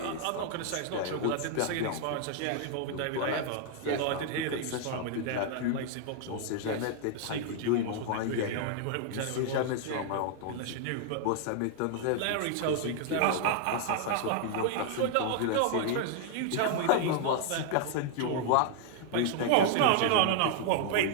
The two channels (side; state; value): both; different; correlation 0.00